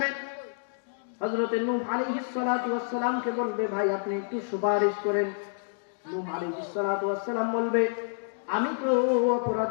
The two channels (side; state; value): right; silent; digital silence